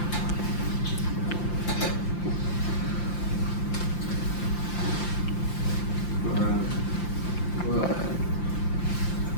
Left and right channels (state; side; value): late; right; 5.8 ms